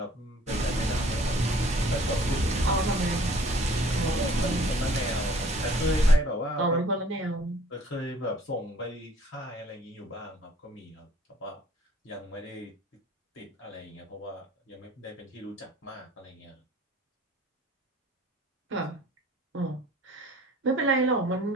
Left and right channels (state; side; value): normal; both; correlation 0.54